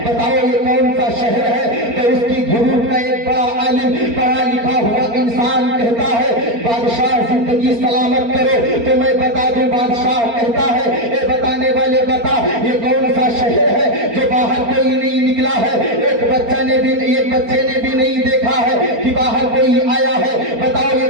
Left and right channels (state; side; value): late; left; 4.4 ms